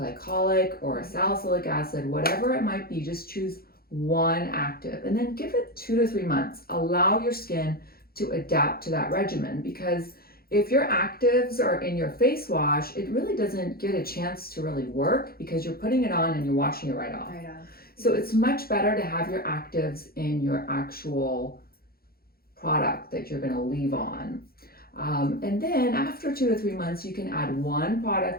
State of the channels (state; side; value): late; right; 0.44 ms